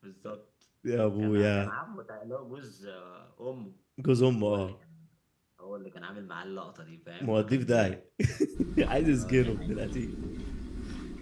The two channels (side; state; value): both; identical; correlation 1.00